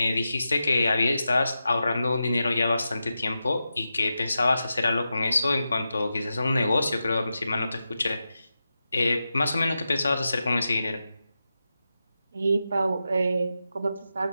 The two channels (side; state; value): both; inverted; correlation -0.90